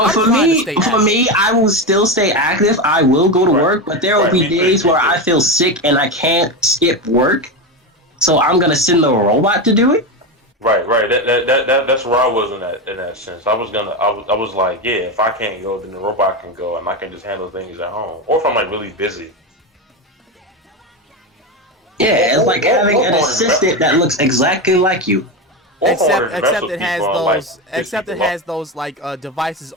I'm trying to stay for active. me, I will still stay active. I will go to Right, work, but there will right. be Me too. days Me where too. I feel sick and I can't skip work. So I'm gonna send the robot to do it. Right, right. That's where I was in that sense. I was like, yeah, if I can't go, then the robot can go, and I can just handle things at home. Or if I'm like really busy. Yeah, it's like having Or an if I want to assistant that looks exactly like you. or if I wanted to mess Except with it people has and like those piss except it people off. has those like devices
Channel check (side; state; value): both; normal; correlation 0.15